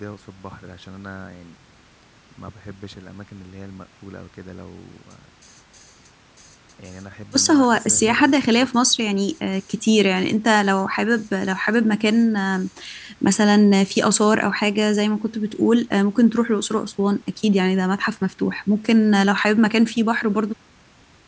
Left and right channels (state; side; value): identical; both; correlation 1.00